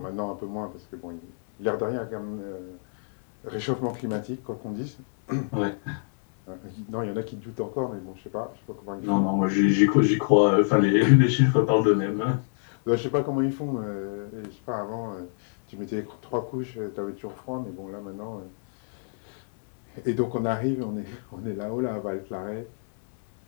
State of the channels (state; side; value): silent; right; 60 dB below the other